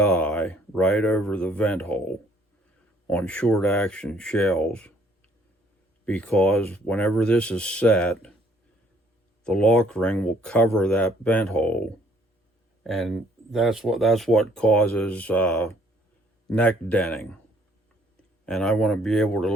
right over the vent hole on short action shells, because whenever this is set, the lock ring will cover that vent hole, and that's what causes neck denting. And I want to be able to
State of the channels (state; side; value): normal; both; correlation 0.63